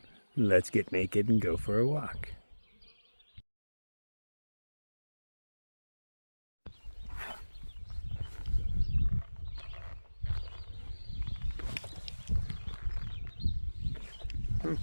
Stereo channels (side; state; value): both; inverted; correlation -1.00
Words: Let's get naked and go for a walk.